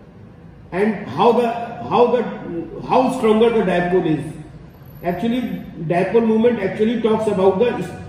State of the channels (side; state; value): both; identical; correlation 1.00